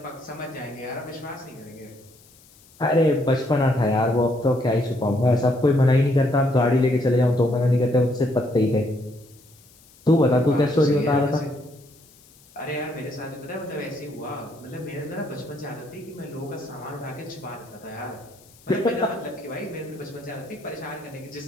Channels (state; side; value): noise; left; hiss, 27 dB below the sound